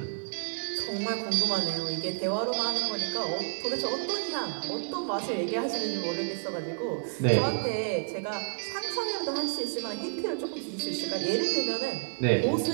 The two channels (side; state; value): left; silent; 58 dB below the other